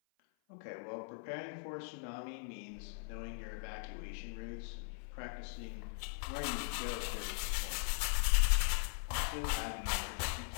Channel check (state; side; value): silent; right; 51 dB below the other